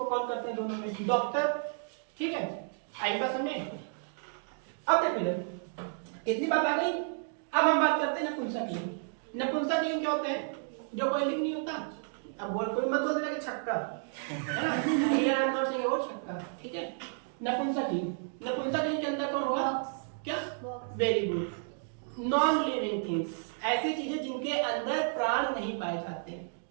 कॉल करते हैं दोनों में, डॉक्टर, ठीक है। आई बात समझे। अब देखो इधर इतनी बात आ गई। अब हम बात करते हैं नपुंसक लिंग। नपुंसक लिंग क्या होते हैं, जो कोई लिंग नहीं होता। अब बोल कोई मत बोल देना कि छक्का है ना, here I am not saying about छक्का, ठीक है। नपुंसक लिंग, नपुंसक लिंग के अंदर कौन होगा, क्या, very good, non living things, ऐसी चीजें जिनके अंदर प्राण नहीं पाए जाते हैं।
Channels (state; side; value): silent; left; digital silence